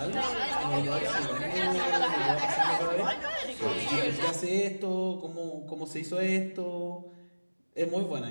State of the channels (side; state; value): both; inverted; correlation -1.00